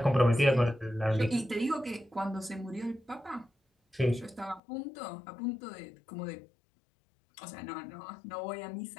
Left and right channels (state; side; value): drops out; right; at 4.6 s